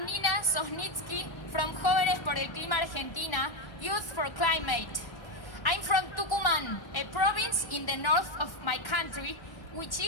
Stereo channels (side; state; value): right; late; 1.1 ms